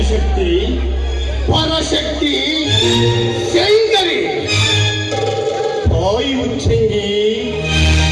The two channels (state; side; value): identical; both; correlation 1.00